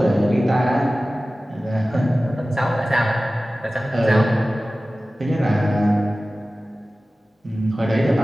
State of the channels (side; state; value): both; normal; correlation 0.96